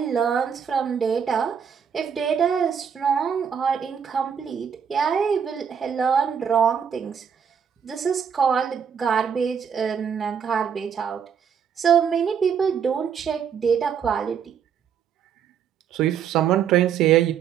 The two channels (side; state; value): left; quieter; 7.5 dB